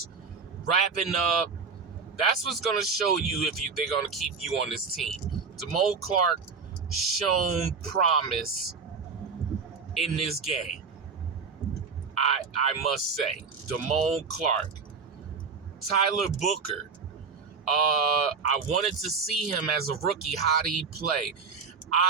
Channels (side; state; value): left; quieter; 5.3 dB